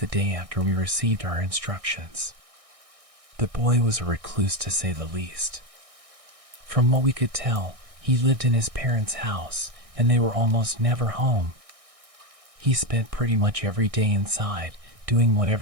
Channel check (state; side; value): late; left; 1.6 ms